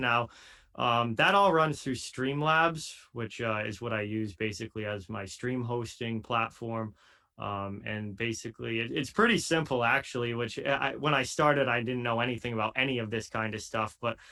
That all runs through Streamlabs, which is what I use basically as my stream hosting platform. And basically, it's pretty simple, actually, which when I started, I didn't know anything about any of this kind of stuff. But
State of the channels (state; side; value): identical; both; correlation 1.00